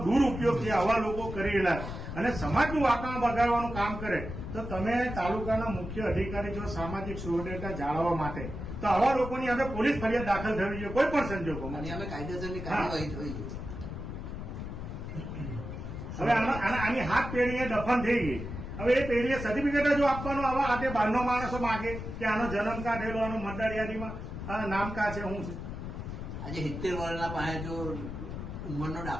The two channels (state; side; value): noise; left; rumble, 7 dB below the sound